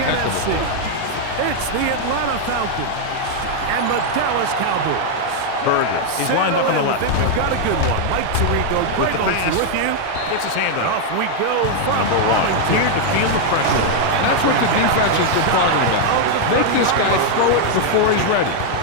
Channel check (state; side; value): different; both; correlation 0.00